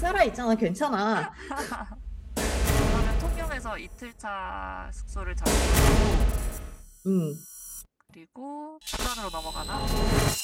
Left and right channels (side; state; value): both; identical; correlation 1.00